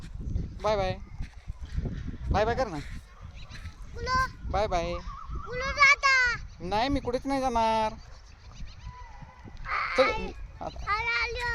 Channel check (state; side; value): identical; both; correlation 1.00